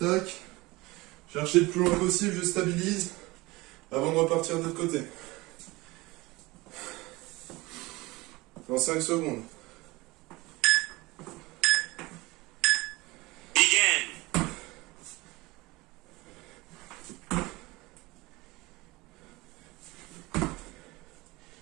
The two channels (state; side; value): quieter; left; 21.6 dB